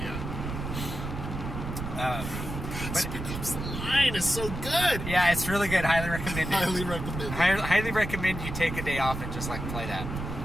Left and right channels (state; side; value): noise; right; rumble, 6 dB below the sound